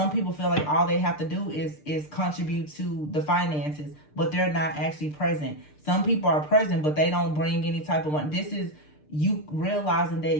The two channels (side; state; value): right; late; 6.7 ms